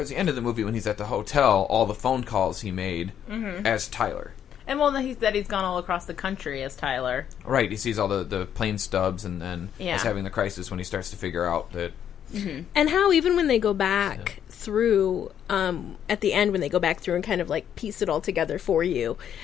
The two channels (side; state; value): right; quieter; 9.4 dB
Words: the end of the movie, when he's at the hotel, all the phone calls he made as Tyler. And he's gone all across the country as Tyler. Right, he sees all the plane stubs, and then is having the crisis when he starts to figure out that... And how even when they go back through, at the end when they go back through and kind of like piece it all together for you,